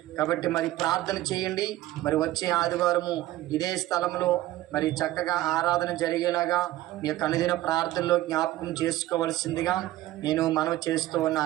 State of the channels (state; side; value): quieter; left; 15.6 dB